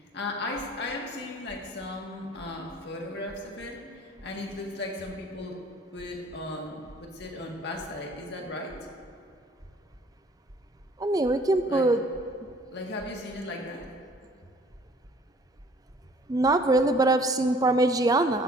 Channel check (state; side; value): normal; both; correlation 0.54